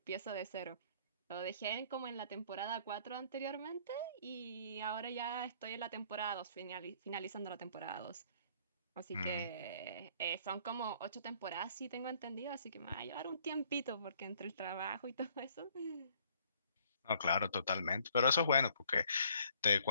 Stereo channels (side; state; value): both; inverted; correlation -0.61